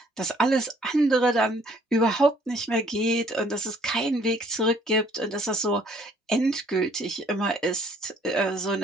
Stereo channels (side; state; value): both; normal; correlation 0.61